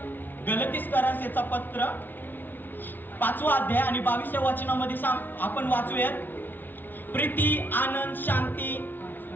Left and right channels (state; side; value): late; right; 0.090 ms